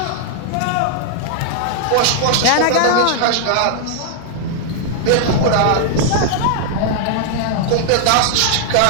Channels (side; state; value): both; different; correlation -0.01